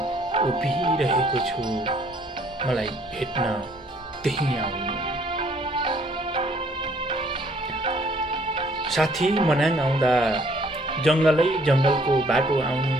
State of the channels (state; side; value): normal; both; correlation 0.62